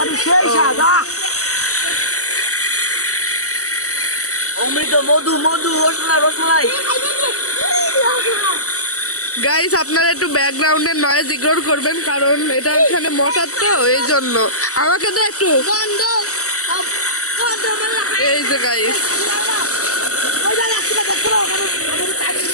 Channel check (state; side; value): late; right; 0.66 ms